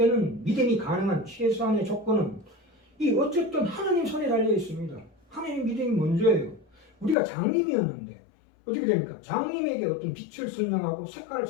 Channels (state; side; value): drops out; right; at 7.2 s